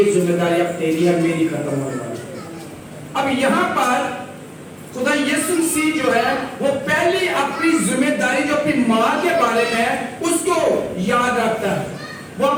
ذمہ داری اب تیری ہے، میری ختم ہونے والی ہے۔ اب یہاں پر خدا یسوع مسیح جو ہے وہ پہلی اپنی ذمہ داری جو اپنی ماں کے بارے میں ہے اس کو یاد رکھتا ہے۔ وہ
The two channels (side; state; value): both; identical; correlation 1.00